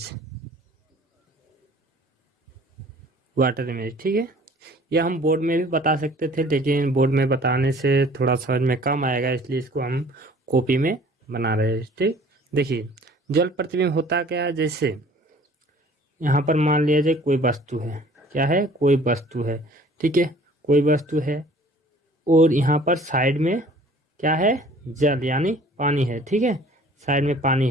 water image, ठीक है। यह हम बोर्ड में भी बता सकते थे, लेकिन बोर्ड में बताने से थोड़ा समझ में कम आएगा, इसलिए इसको हम कॉपी में बना रहे हैं, ठीक। देखिए, जल प्रतिबिंब होता क्या है। जैसे यहाँ पर मान लिया जाए कोई वस्तु है, क्या है? कोई वस्तु है, ठीक है। कोई वस्तु है और यहाँ पर साइड में क्या है? जल यानी पानी है, ठीक है। साइड में पानी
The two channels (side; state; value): both; normal; correlation 0.51